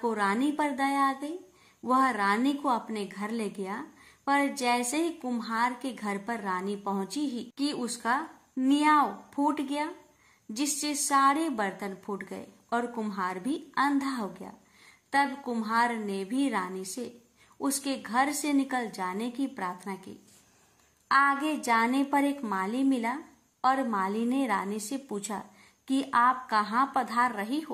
रानी पर दया आ गई। वह रानी को अपने घर ले गया, पर जैसे ही कुम्हार के घर पर रानी पहुंची ही कि उसका नियाव फूट गया, जिससे सारे बर्तन फूट गए और कुम्हार भी अंधा हो गया। तब कुम्हार ने भी रानी से उसके घर से निकल जाने की प्रार्थना की। आगे जाने पर एक माली मिला और माली ने रानी से पूछा कि आप कहाँ पधार रही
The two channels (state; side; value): identical; both; correlation 1.00